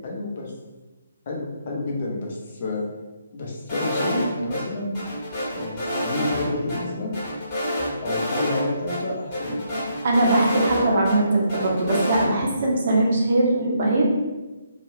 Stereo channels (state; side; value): inverted; both; correlation -0.74